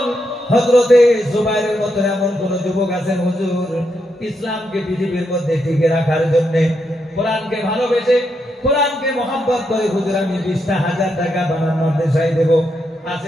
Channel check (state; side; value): normal; both; correlation 0.81